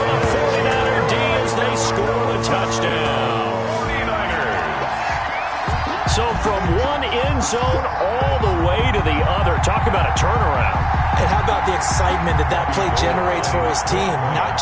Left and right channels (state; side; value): identical; both; correlation 1.00